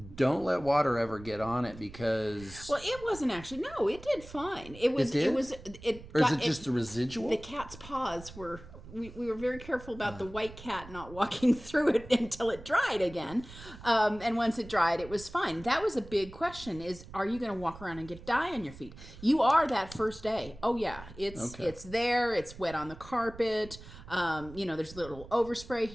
let water ever get on it, because... Well, it wasn't actually. No, it did fine. Or is it just the residual? The cat's paws were... We were very careful about the white cat not walking through it until it dried again. And once it dried, it was fine. That was a big question, is, are you going to walk around and get dye on your feet? You are that first day. Oh, yeah. It's there. It's wet on the carpet. There's a little overspray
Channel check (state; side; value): noise; right; rumble, 17 dB below the sound